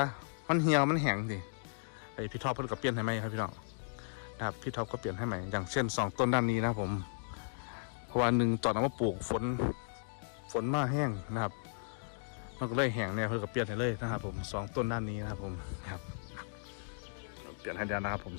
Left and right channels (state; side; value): silent; right; digital silence